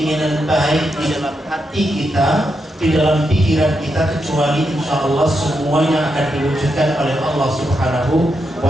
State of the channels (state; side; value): normal; both; correlation 0.84